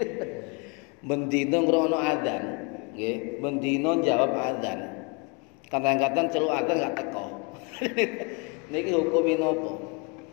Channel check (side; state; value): right; quieter; 32.0 dB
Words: Mendina ngrungokno adzan, nggih, mendina jawab adzan. Kadang-kadang celuk adzan gak teko. Niki hukume napa?